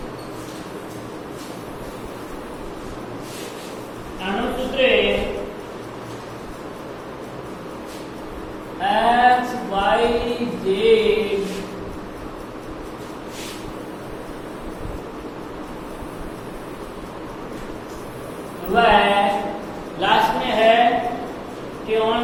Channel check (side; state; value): both; identical; correlation 1.00